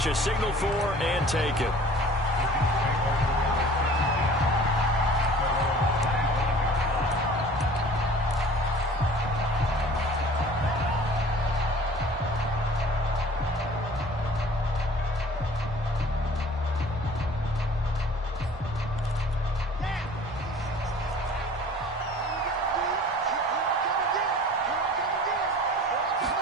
is signaled for and taken.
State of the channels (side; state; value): both; normal; correlation 0.47